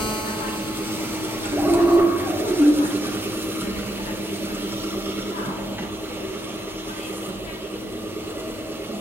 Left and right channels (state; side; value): normal; both; correlation 0.80